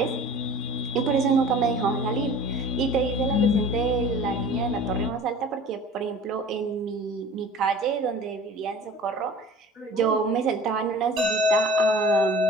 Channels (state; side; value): normal; both; correlation 0.43